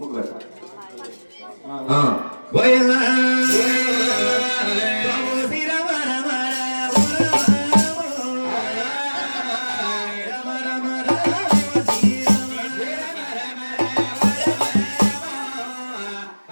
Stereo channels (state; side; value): inverted; both; correlation -1.00